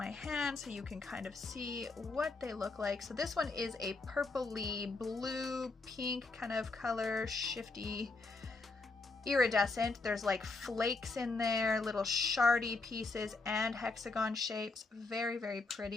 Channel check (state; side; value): quieter; right; 3.7 dB